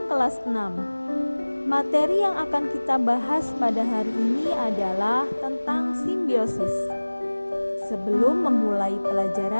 kelas 6. Materi yang akan kita bahas pada hari ini adalah tentang simbiosis. Sebelum memulai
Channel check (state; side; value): inverted; both; correlation -1.00